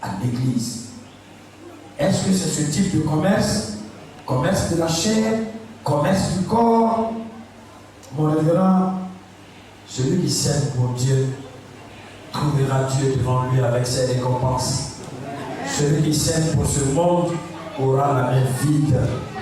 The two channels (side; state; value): both; identical; correlation 1.00